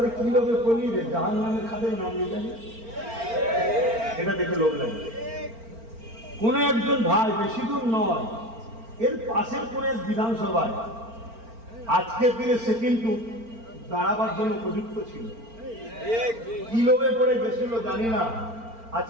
কি লোকে বলি রে জাহান্নামের খাদের নাম নিয়ে জানি, এটা দেখে লোক লাগে। কোন একজন ভাই বেশি দূর নয়, এর পাশের কোন এক বিধানসভায় আজকের দিনে সে কিন্তু দাঁড়াবার জন্য উপযুক্ত ছিল, কি লোভে পড়ে গেছিল জানি না,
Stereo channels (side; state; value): left; late; 4.4 ms